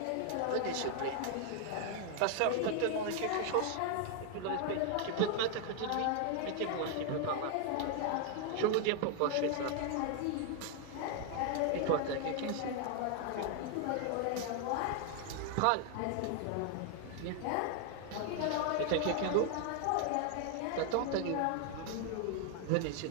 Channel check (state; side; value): different; both; correlation 0.00